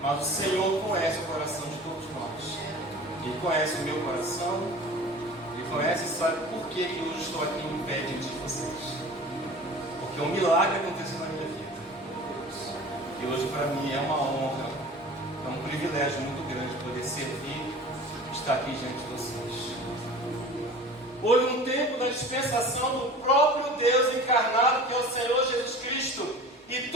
mas o Senhor conhece o coração de todos nós. Ele conhece o meu coração, Ele conhece e sabe por que hoje estou aqui em pé diante de vocês. Porque um milagre aconteceu na minha vida. E hoje para mim é uma honra, é um privilégio muito grande poder servir, estar aqui diante de vocês. Houve um tempo da dispensação do próprio Deus encarnado, que é o Senhor Jesus Cristo. E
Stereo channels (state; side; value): normal; both; correlation 0.40